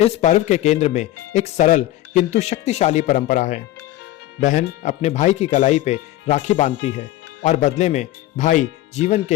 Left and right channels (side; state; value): right; quieter; 15.0 dB